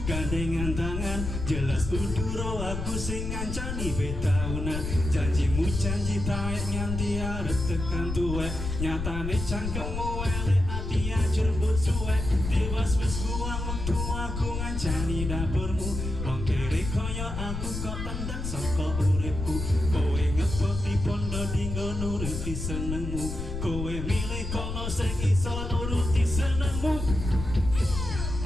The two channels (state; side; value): noise; left; rumble, 4 dB below the sound